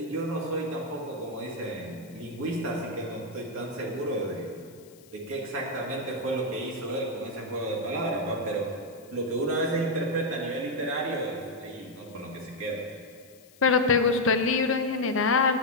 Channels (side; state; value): left; noise; hiss, 26 dB below the sound